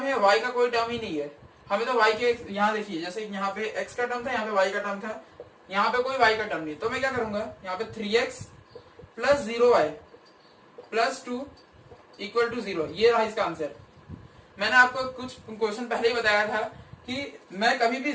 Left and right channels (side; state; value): both; identical; correlation 1.00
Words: है, y का कोई टर्म ही नहीं है। हमें तो y के, यहाँ देखिए जैसे यहाँ पे x का टर्म था, यहाँ पे y का टर्म था, यहाँ पे कोई y का टर्म नहीं। तो मैं क्या करूंगा, यहाँ पे 3x plus 0y plus 2 equal to 0। ये रहा इसका आंसर। मैंने आपको कुछ क्वेश्चन पहले ही बताया था कि मैं कभी भी